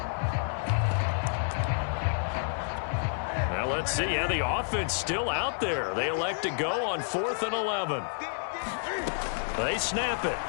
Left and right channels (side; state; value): right; silent; digital silence